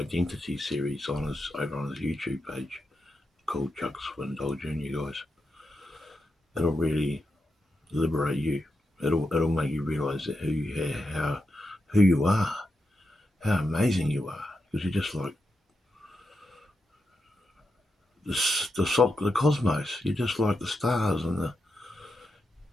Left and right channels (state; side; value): normal; both; correlation 0.86